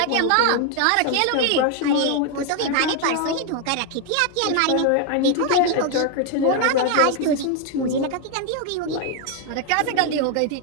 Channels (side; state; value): both; different; correlation 0.01